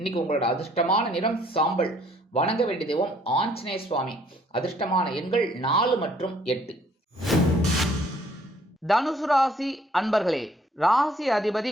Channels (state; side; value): normal; both; correlation 0.62